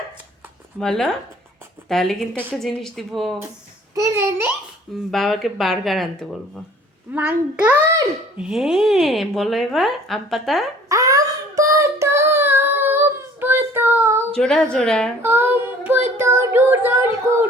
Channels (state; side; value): normal; both; correlation 0.51